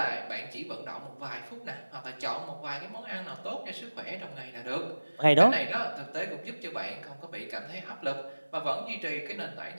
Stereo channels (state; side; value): inverted; both; correlation -1.00